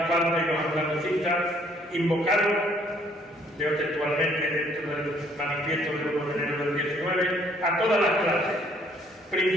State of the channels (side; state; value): both; normal; correlation 0.63